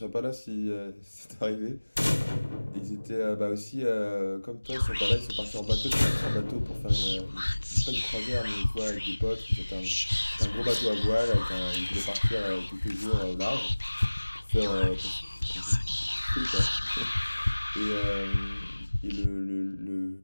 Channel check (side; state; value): both; inverted; correlation -1.00